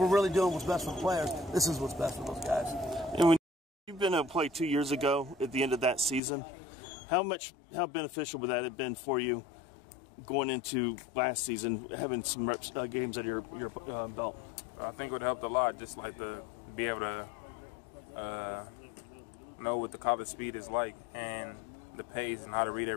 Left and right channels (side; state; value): right; drops out; at 6.2 s